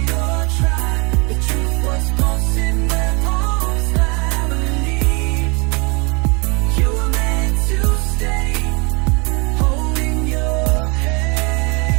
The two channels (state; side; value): quieter; left; 30.2 dB